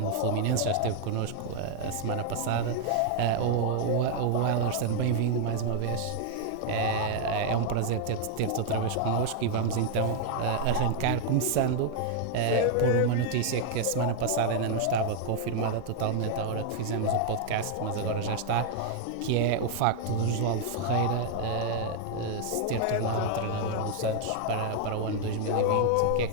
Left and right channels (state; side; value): different; both; correlation 0.00